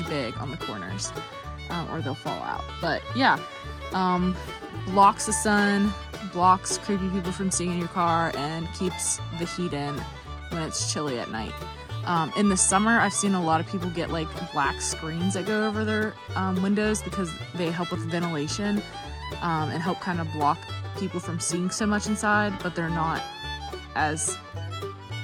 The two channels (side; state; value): both; identical; correlation 1.00